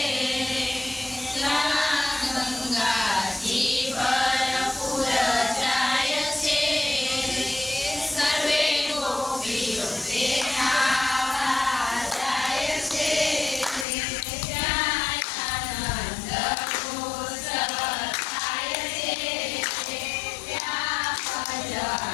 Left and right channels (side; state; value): right; drops out; at 13.9 s